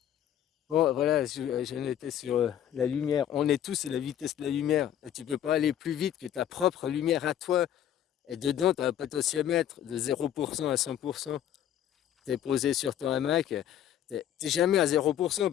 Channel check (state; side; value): quieter; right; 10.6 dB